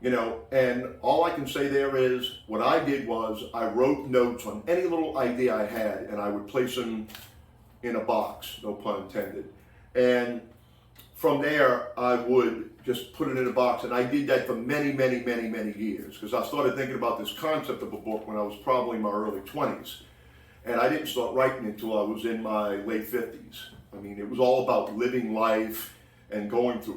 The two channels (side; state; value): both; identical; correlation 1.00